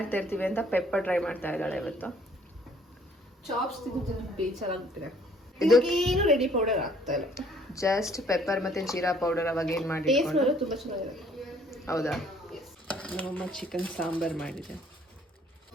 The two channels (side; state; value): both; normal; correlation 0.60